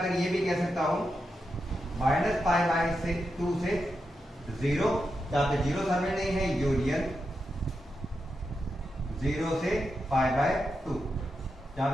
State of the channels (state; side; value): normal; both; correlation 0.87